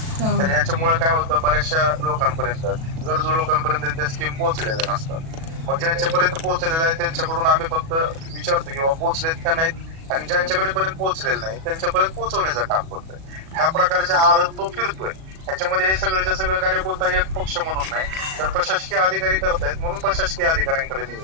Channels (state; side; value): late; left; 37 ms